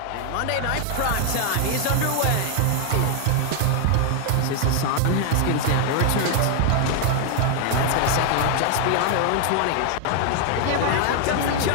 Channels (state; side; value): different; both; correlation 0.00